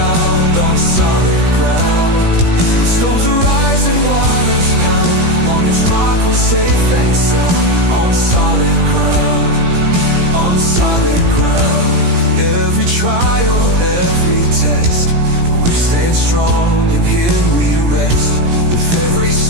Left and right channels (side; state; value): left; late; 17 ms